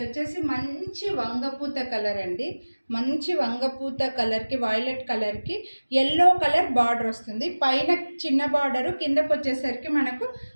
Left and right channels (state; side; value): inverted; both; correlation -1.00